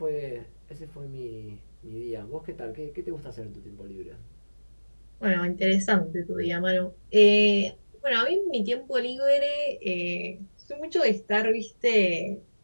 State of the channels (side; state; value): both; inverted; correlation -1.00